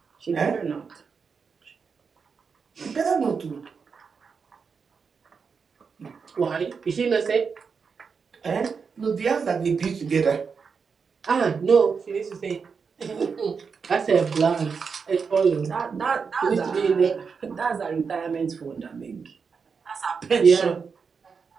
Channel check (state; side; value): quieter; left; 5.6 dB